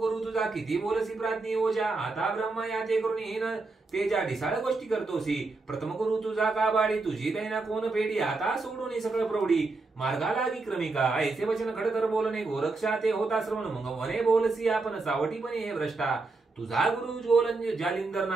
तुझा किती बोलसी प्राज्ञी ओजा. आता ब्रह्म या ते करून हीन तेजा ढिसाळ गोष्टी करतोसी. प्रथम गुरु तुझा का बाडी तुझी दैना कोण पेडी. आता सोडून सगळं प्रौढी मार्गा लागी क्रमिका. ऐसे वचन खडतर बोलणे गोरक्षा ते होता श्रवण. मग म्हणे बोलसी आपण सावटीपणे हे भ्रष्टा. तुझा गुरु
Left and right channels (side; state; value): left; quieter; 3.6 dB